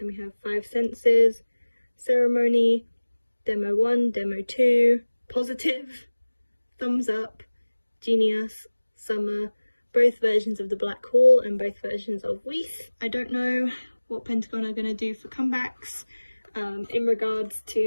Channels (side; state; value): both; inverted; correlation -1.00